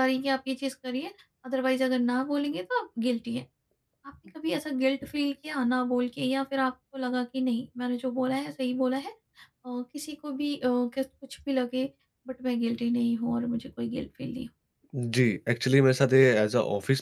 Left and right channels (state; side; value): identical; both; correlation 1.00